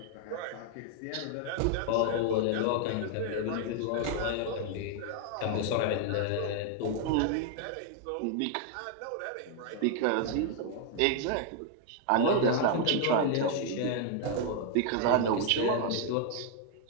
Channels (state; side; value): different; both; correlation 0.00